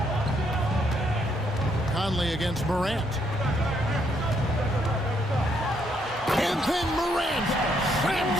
Conley against Morant. And then Morant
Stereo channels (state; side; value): normal; both; correlation 0.73